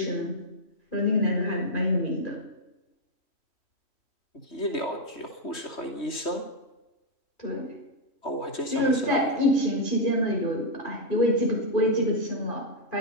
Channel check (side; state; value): right; late; 3.2 ms